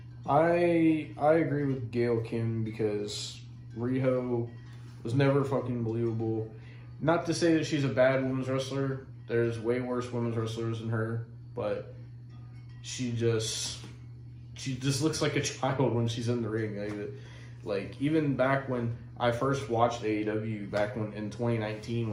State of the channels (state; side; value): identical; both; correlation 1.00